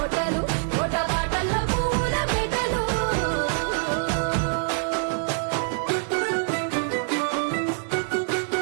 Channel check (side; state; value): left; silent; 61 dB below the other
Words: తోట బాటల పువ్వుల మెటలు